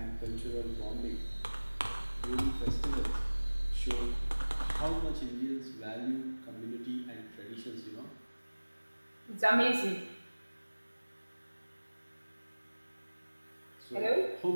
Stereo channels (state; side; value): inverted; both; correlation -1.00